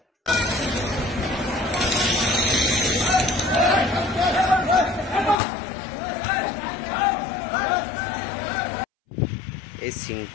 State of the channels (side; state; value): right; drops out; at 5.4 s